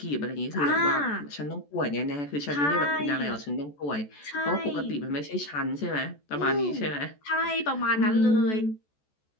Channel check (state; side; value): late; right; 14 ms